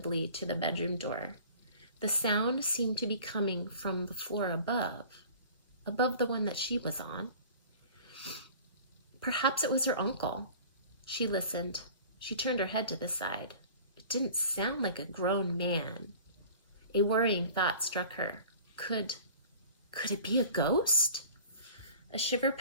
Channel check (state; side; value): inverted; both; correlation -0.44